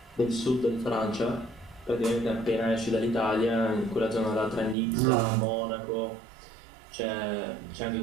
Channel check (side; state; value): left; drops out; at 4.8 s